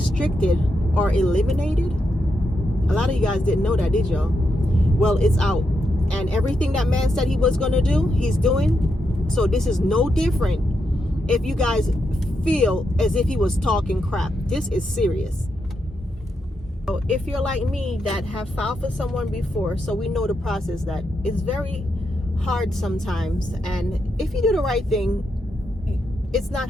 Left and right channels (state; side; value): normal; both; correlation 0.83